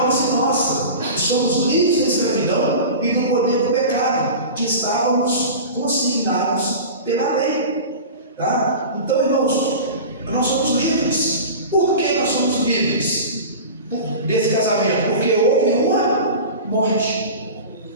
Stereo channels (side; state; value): both; inverted; correlation -0.33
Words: nossa, e somos livres da escravidão e do poder do pecado, que estávamos consignados pela lei. Tá? Então, irmãos, nós somos livres. Por que nós somos livres desse casamento? Porque houve uma morte.